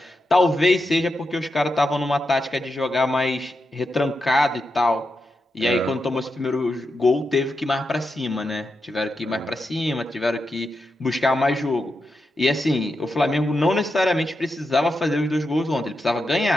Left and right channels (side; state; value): both; normal; correlation 0.87